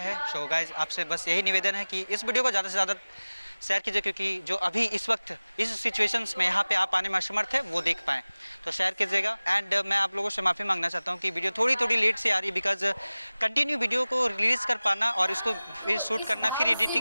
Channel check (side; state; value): both; inverted; correlation -0.99